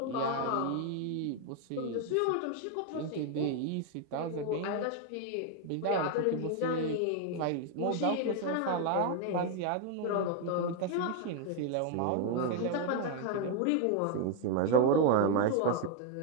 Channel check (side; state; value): both; different; correlation 0.01